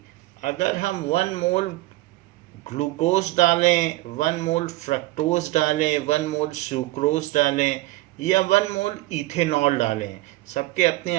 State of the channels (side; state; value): left; quieter; 18.9 dB